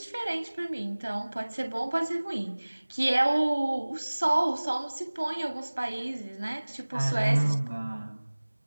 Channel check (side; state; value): both; inverted; correlation -1.00